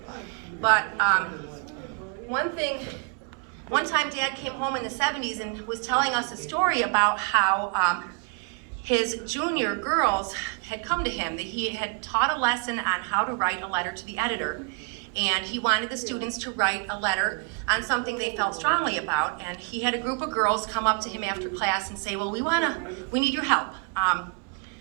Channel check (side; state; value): left; quieter; 34.7 dB